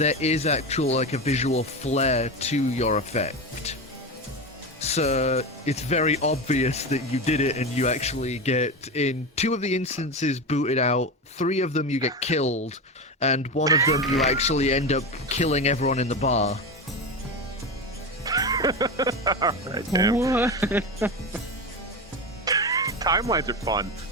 is actual like a visual flair to your effect. So it's very obvious that you did it, and you actually get, in 2 of the instances, booted out. 3 of them you get killed, and 1 of them you actually end up killing everyone in the bar. Alright, damn. What? Timelines are fun.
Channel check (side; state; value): both; normal; correlation 0.20